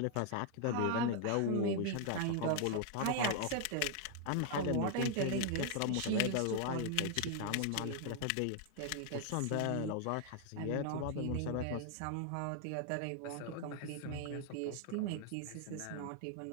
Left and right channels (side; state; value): both; different; correlation 0.00